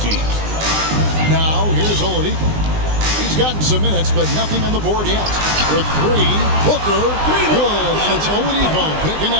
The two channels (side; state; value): left; late; 19 ms